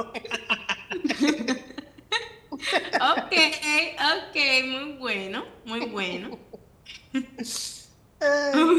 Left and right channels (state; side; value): identical; both; correlation 1.00